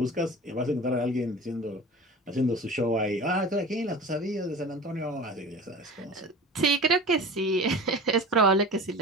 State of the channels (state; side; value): normal; both; correlation 0.36